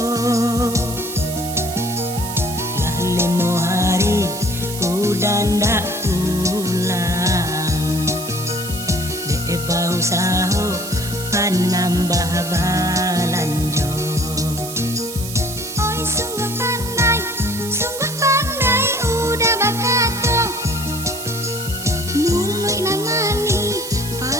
lah leno hari udah ndak pulang de bau saho panambah balanjo. Oi sungguh pandai udah bakato mulai namani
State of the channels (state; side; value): noise; right; hiss, 9 dB below the sound